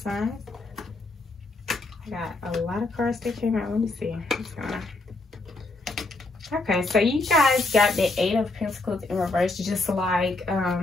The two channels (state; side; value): quieter; right; 3.1 dB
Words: signs. I got a lot of cards that came out. Let me see. Okay, so you guys got the Eight of Pentacles in reverse, just like